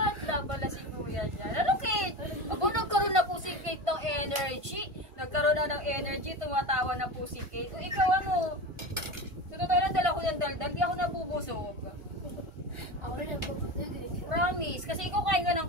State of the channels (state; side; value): late; left; 1.5 ms